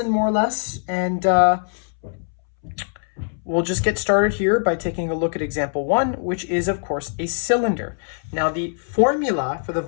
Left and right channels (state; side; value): silent; right; 64 dB below the other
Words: more or less, and we'll just get started here by taking a look at example 1, which is, of course, a cylinder. Now, the formula for the